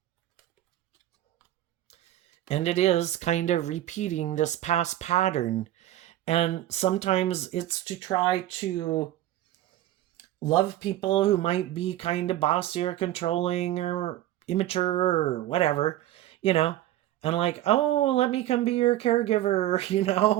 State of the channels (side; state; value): left; quieter; 13.9 dB